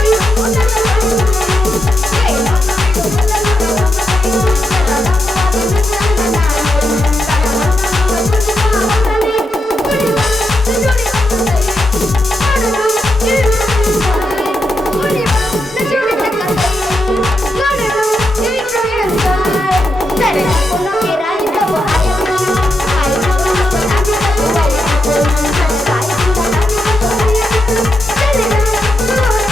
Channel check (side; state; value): both; normal; correlation 0.85